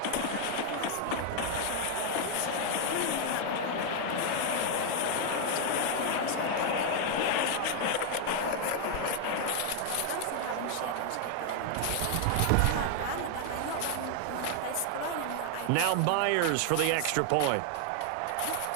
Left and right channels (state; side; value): different; both; correlation 0.00